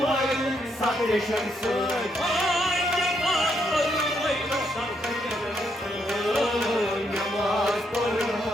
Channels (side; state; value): both; normal; correlation 0.76